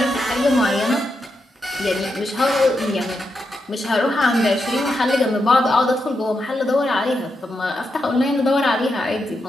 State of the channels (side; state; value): both; normal; correlation 0.85